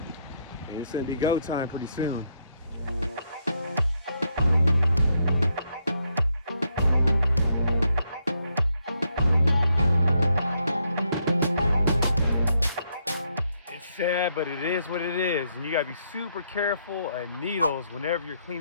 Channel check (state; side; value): inverted; both; correlation -0.76